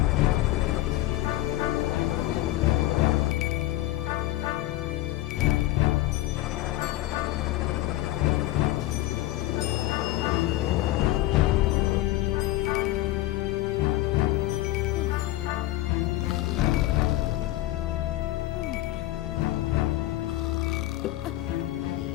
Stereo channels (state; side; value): quieter; right; 16.2 dB